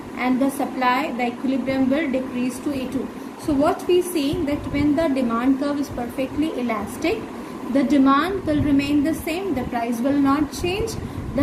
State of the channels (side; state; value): both; identical; correlation 1.00